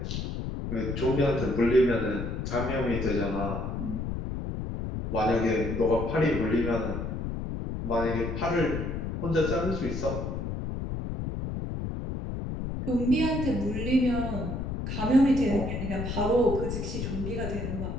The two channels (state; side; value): noise; left; rumble, 4 dB below the sound